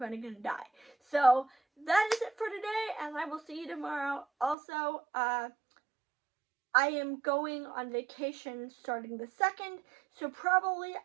gonna die? So that is it for today, and I will see you tomorrow. Also, I am going on vacation starting the 2nd, so probably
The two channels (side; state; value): left; drops out; at 4.5 s